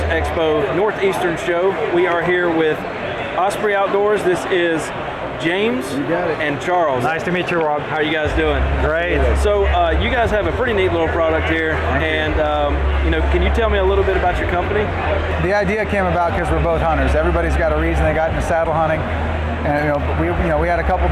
Expo Northeastern show. We are here with Osprey Outdoors. This is James and Charles. Nice to meet you, Rob. How are you guys doing? Great. So you guys have a pretty neat little product here, and can you tell me a little bit about your company? The idea came about because we're both hunters. Everybody's got a reason they got into saddle hunting, and we had a couple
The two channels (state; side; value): identical; both; correlation 1.00